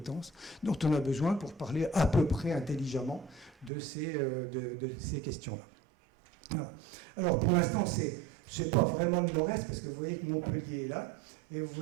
dont on a besoin pour parler à peu près intelligemment de ces questions-là. Voilà. Alors, pour l'instant, c'est pas vraiment le nord-est, parce que vous voyez que Montpellier est là, et vous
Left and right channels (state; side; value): drops out; left; at 3.7 s